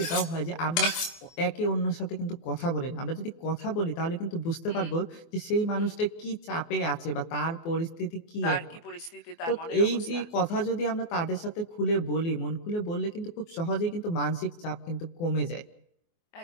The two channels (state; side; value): late; right; 24 ms